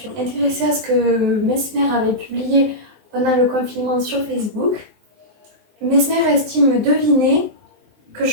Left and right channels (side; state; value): left; late; 19 ms